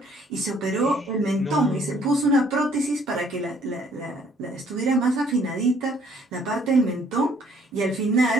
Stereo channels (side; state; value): both; normal; correlation 0.61